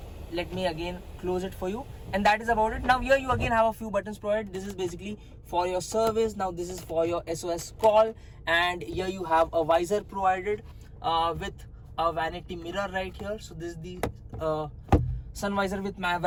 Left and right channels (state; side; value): identical; both; correlation 1.00